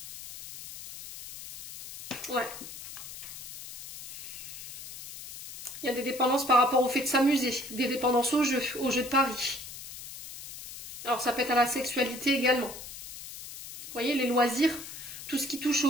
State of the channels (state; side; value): noise; left; hiss, 12 dB below the sound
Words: Ouais. Il y a des dépendances par rapport au fait de s'amuser, des dépendances au jeu de paris. Alors ça peut être à la sexualité également. Vous voyez, les loisirs, tout ce qui touche